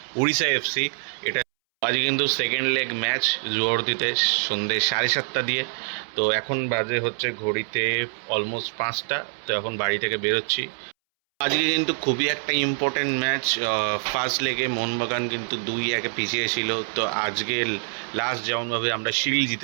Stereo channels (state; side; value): silent; left; 62 dB below the other